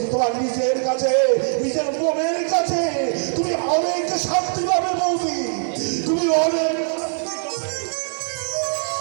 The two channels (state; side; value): silent; left; digital silence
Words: তোমার নিজের কাছে, নিজের মনের কাছে তুমি অনেক শান্তি পাবে বৌদি, তুমি অনেক।